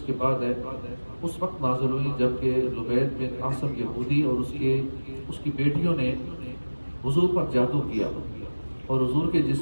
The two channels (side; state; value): both; inverted; correlation -1.00